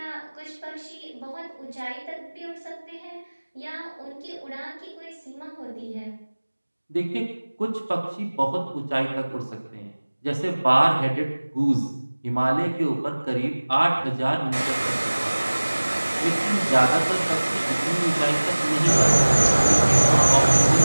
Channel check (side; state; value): both; inverted; correlation -1.00